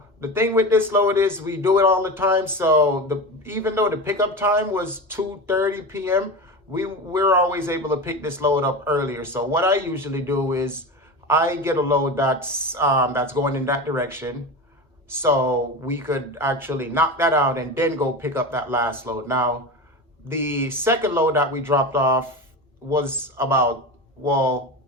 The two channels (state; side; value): normal; both; correlation 0.25